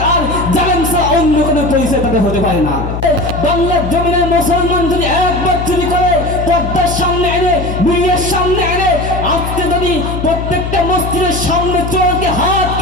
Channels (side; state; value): left; noise; hum, 5 dB below the sound